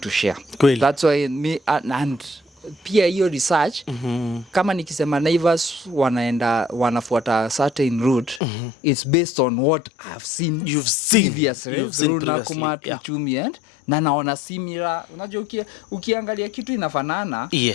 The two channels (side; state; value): right; drops out; at 8.4 s